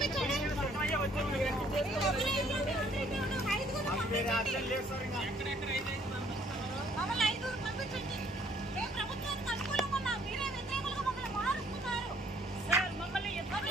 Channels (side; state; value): both; normal; correlation 0.62